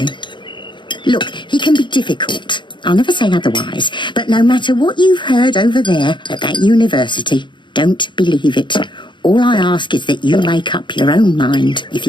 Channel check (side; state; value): right; late; 0.23 ms